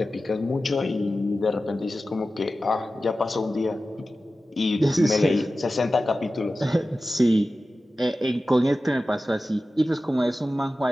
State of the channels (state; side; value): normal; both; correlation 0.94